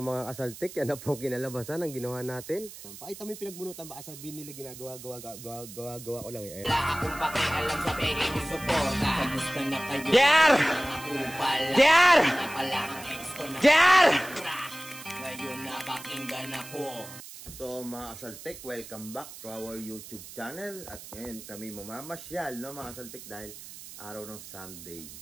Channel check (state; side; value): noise; right; hiss, 14 dB below the sound